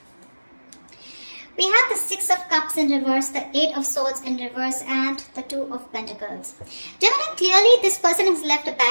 We have the Six of Cups in reverse, the Eight of Swords in reverse, and the Two of Pentacles. Gemini, clearly this person has left a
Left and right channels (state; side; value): inverted; both; correlation -1.00